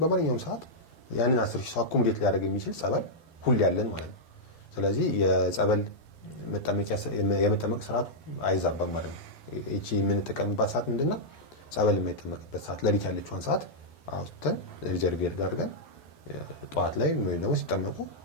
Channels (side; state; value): right; late; 12 ms